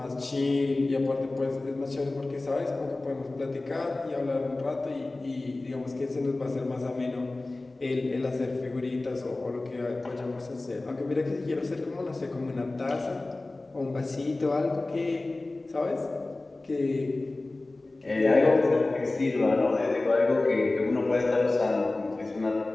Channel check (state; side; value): quieter; right; 3.0 dB